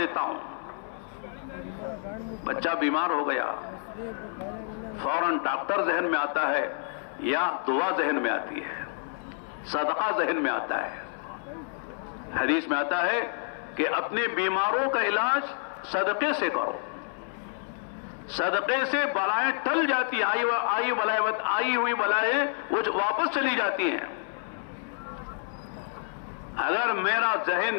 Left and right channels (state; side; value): silent; right; 59 dB below the other